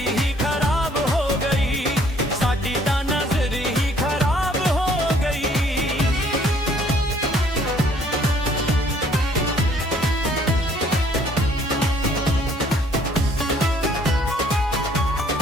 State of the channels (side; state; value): both; normal; correlation 0.61